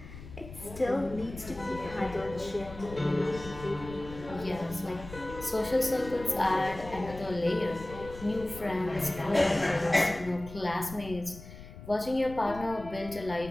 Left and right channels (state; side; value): noise; left; rumble, 14 dB below the sound